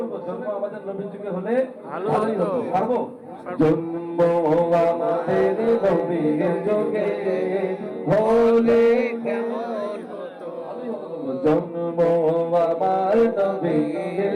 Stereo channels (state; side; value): identical; both; correlation 1.00